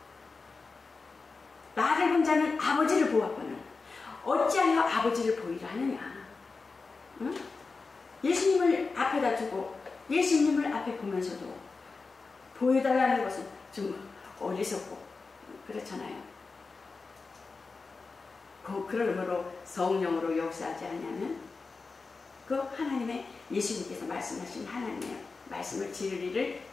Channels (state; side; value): quieter; right; 4.2 dB